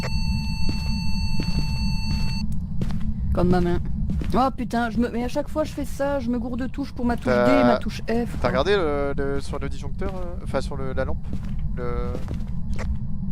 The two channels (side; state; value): both; identical; correlation 1.00